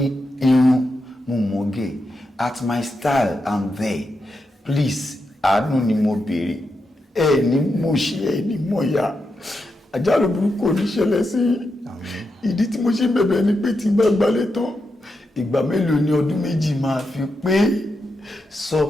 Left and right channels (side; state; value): both; normal; correlation 0.86